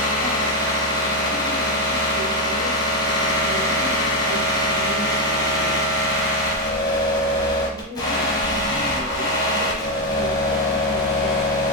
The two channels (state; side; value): normal; both; correlation 0.06